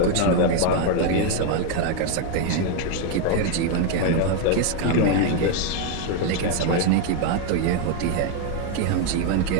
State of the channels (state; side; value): different; both; correlation 0.01